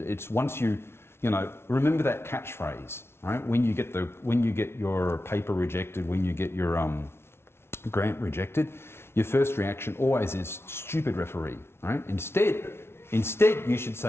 it's once remember that catchphrase. Right? When you get your paper rejected, when you get your grant rejected, your first reaction always is stupid referee. Right? Instead, you should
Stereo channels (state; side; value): late; right; 0.12 ms